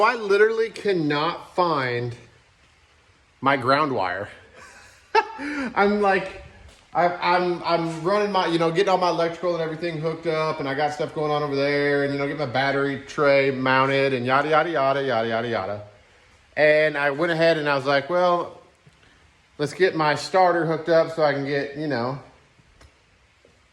I literally cannot find my ground wire. I'm like, I'm running my, getting all my electrical and everything hooked up, and I got stuff going on over there, and get my battery tray mounted and yada, yada, yada, yada, yada, yada. And I went ahead and I was like, well, let's get my starter hooked up so I can get,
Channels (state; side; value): identical; both; correlation 1.00